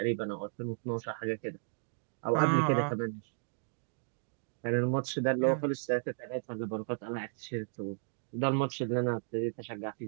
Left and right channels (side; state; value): left; silent; digital silence